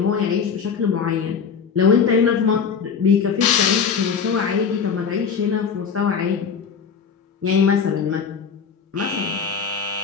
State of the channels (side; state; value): right; quieter; 6.3 dB